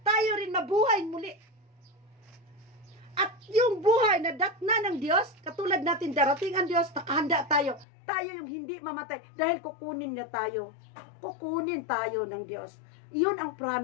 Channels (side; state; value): right; drops out; at 7.9 s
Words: rin mabuhay muli. At yung buhay na datna ng Diyos, katulad natin darating ang Diyos, nakahanda tayo. Tayo yung hindi mamatay dahil kukunin niya tayo. Kukunin tayo ng Diyos. Iyon ang